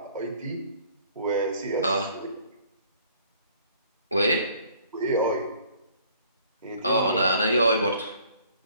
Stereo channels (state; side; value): inverted; both; correlation -0.58